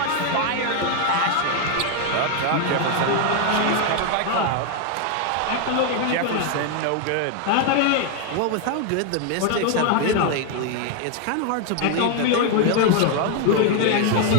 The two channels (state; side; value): different; both; correlation 0.01